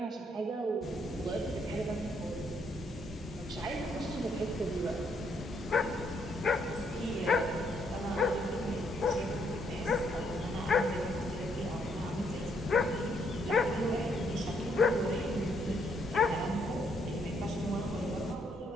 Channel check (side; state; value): both; normal; correlation 0.72